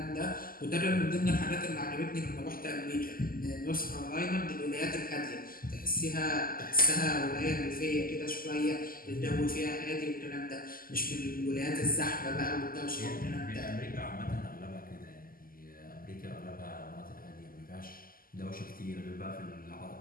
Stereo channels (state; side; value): late; right; 0.42 ms